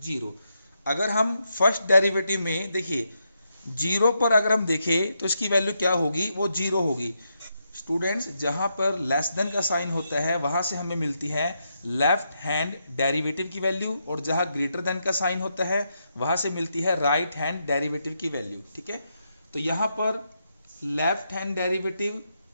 0। अगर हम फर्स्ट डेरिवेटिव में देखिए 0 पर अगर हम देखें तो इसकी वैल्यू क्या होगी, वो 0 होगी। स्टूडेंट्स जहां पर लेस देन का साइन होता है वहां से हमें मिलती है लेफ्ट हैंड डेरिवेटिव की वैल्यू, और जहां ग्रेटर देन का साइन होता है वहां से मिलती है राइट हैंड डेरिवेटिव की वैल्यू। ठीक है, तो यहां पर लेफ्ट हैंड डेरिवेटिव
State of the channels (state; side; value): inverted; both; correlation -0.81